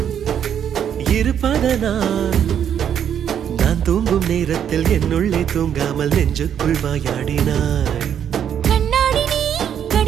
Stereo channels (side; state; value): left; quieter; 9.0 dB